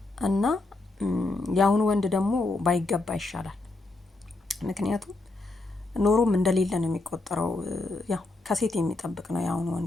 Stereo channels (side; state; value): right; quieter; 3.1 dB